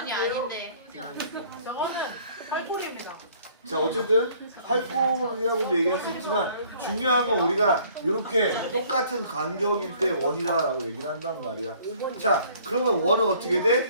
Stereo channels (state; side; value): inverted; both; correlation -0.57